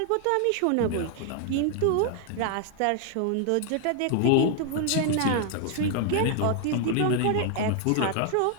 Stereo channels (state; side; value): different; both; correlation 0.00